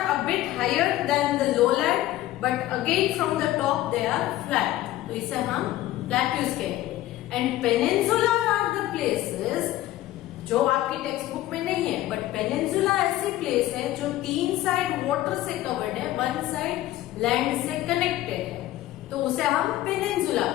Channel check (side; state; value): right; quieter; 15.1 dB